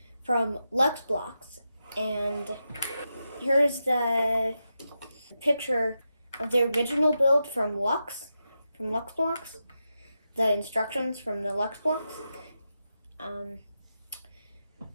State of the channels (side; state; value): both; inverted; correlation -0.88